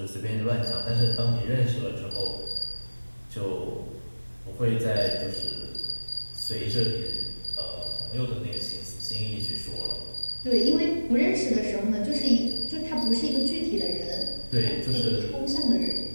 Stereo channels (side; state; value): both; inverted; correlation -1.00